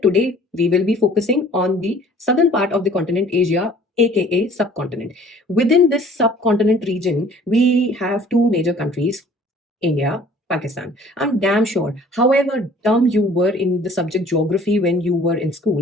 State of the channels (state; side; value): normal; both; correlation 0.52